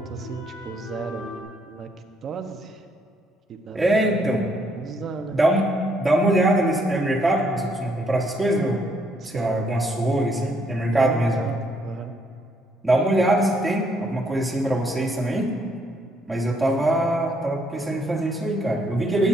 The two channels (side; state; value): both; normal; correlation 0.71